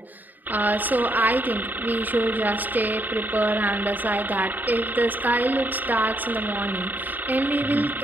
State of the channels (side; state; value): left; late; 0.087 ms